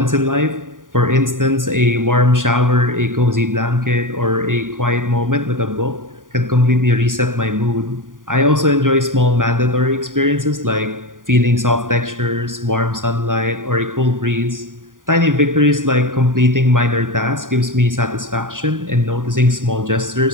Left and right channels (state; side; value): late; left; 0.89 ms